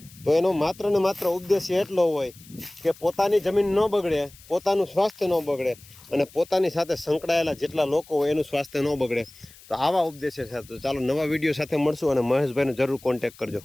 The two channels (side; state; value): left; noise; hiss, 23 dB below the sound